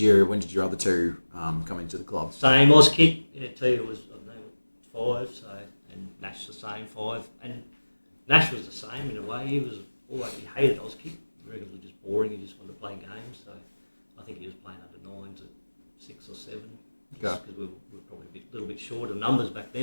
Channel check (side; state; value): both; inverted; correlation -1.00